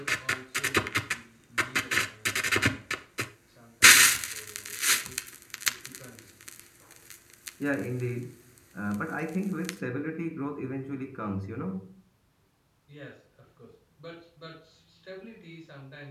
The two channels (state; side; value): identical; both; correlation 1.00